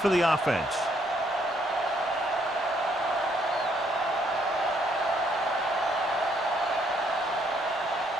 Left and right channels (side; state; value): both; normal; correlation 0.69